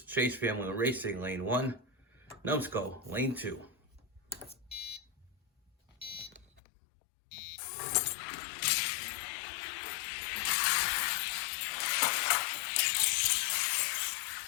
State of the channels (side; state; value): right; drops out; at 6.6 s